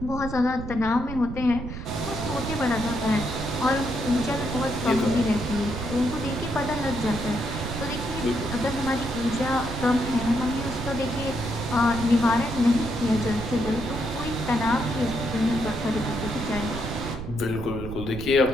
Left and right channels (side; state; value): right; noise; rumble, 8 dB below the sound